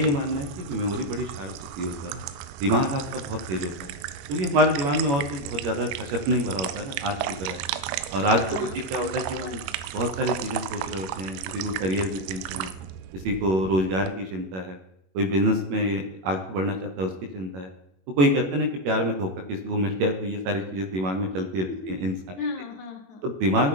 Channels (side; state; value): left; late; 21 ms